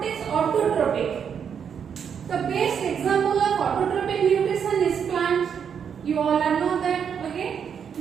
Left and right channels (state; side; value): quieter; left; 7.5 dB